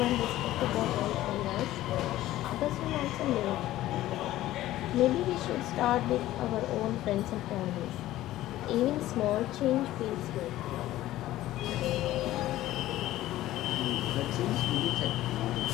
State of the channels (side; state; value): right; quieter; 15.1 dB